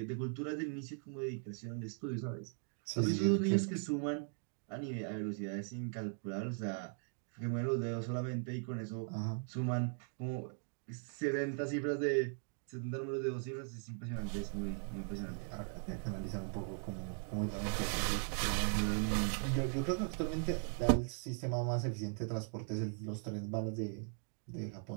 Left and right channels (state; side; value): silent; left; 52 dB below the other